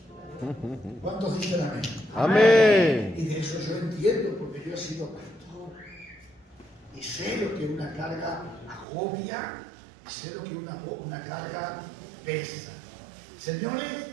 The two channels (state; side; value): drops out; left; at 8.8 s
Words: ¿Cuántos dicen amén? ¡Amén! Y de eso yo entiendo, porque yo he sido pastor. Y sé lo que una carga agobia, y sé lo que una carga pesa. Señores,